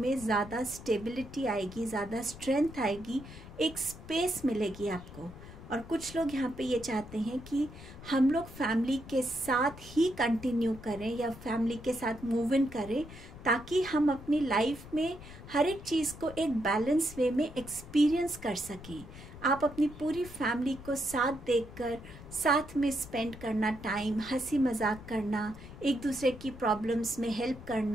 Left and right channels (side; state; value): left; noise; rumble, 15 dB below the sound